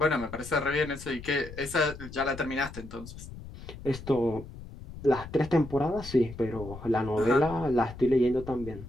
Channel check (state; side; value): noise; left; rumble, 14 dB below the sound